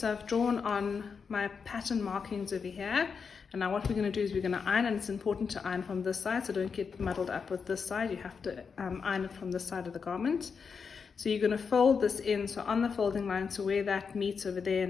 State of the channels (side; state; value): right; quieter; 5.8 dB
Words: I've drawn on my pattern markings over here, and now what we're going to do is we're going to iron, and it's important to iron from this side, so don't get muddled up with this side. You have to iron it from this side of the garment. So you're going to fold this in, so on the folding line, so where that meets over there